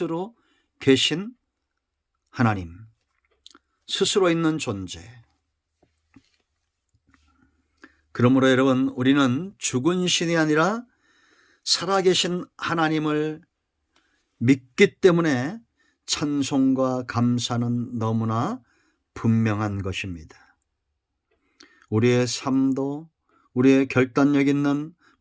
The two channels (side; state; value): both; identical; correlation 1.00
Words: 계신 하나님, 스스로 있는 존재. 그러므로 여러분, 우리는 죽은 신이 아니라 살아계신 하나님을 믿기 때문에 찬송과 감사는 너무나 분명한 것입니다. 우리의 삶도 우리의 결단력 있는